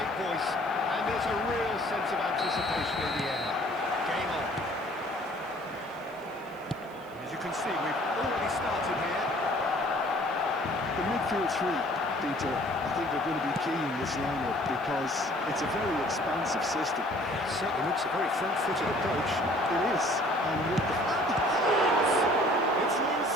voice, and there's a real sense of anticipation in the air. Game on. As you can see, we've already started here. The midfield three, Peter, I think are going to be key in this lineup because it's a very expansive system. It certainly looks a very front-footed approach. It is. And with the... It's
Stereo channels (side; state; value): right; noise; hiss, 27 dB below the sound